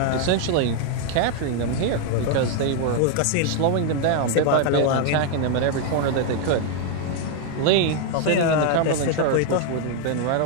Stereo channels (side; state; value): both; different; correlation 0.00